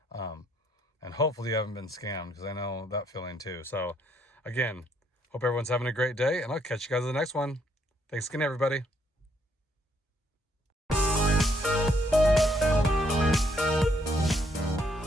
And hopefully you haven't been scammed, because I know that feeling too. So again, hope everyone's having a great day, and I'll catch you guys in the next one. Thanks again, everybody.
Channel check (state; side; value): normal; both; correlation 0.71